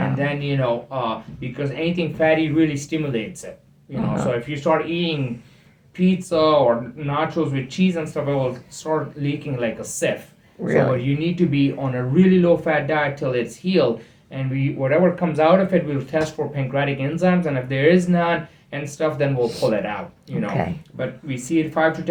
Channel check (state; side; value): identical; both; correlation 1.00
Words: then because anything fatty really stimulates it, so if you start eating pizza or nachos with cheese and stuff, it will start leaking like a sieve. Really? So you need to be on a really low fat diet till it's healed, and whatever comes out of it, we'll test for pancreatic enzymes, and if there is none and stuff, then we'll pull it out. Okay. But we see it 5 to